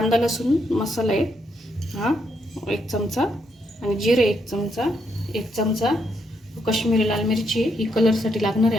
लसूण मसाला आहे हा 1 चमचा, आणि जिरे 1 चमचा, 1 चमचा कश्मीरी लाल मिरची ही कलरसाठी लागणार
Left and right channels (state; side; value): normal; both; correlation 0.77